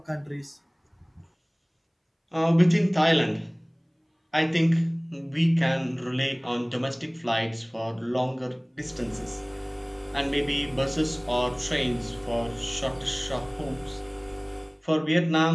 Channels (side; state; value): both; identical; correlation 1.00